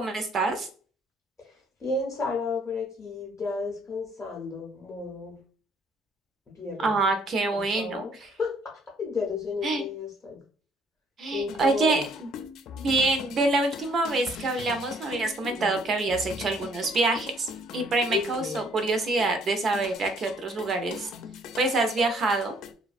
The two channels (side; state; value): both; normal; correlation 0.63